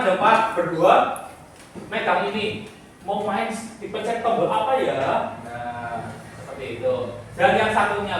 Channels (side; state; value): both; identical; correlation 1.00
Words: ada 4 berdua megang ini. Mau main dipencet tombol apa ya? Nah, seperti itu. Dan yang satunya